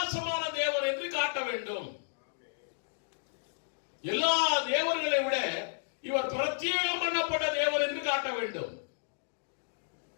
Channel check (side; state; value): right; silent; digital silence